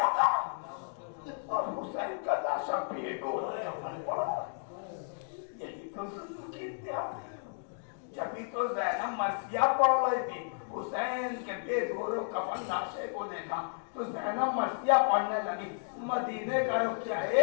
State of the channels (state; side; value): silent; right; digital silence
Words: تھا اور حسین کا لاشا بھی گول کفن پڑا. یہی تو ظلم کی انتہا تھی. جبھی تو زینب مرثیہ پڑھ رہی تھی, حسین کے بے گورو کفن لاشے کو دیکھا تو زینب مرثیہ پڑھنے لگی. مدینے کا رخ کیا,